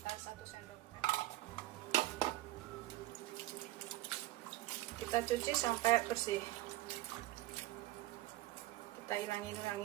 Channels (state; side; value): quieter; left; 17.0 dB